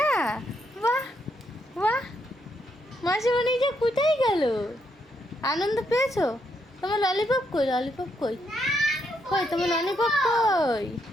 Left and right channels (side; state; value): both; normal; correlation 0.77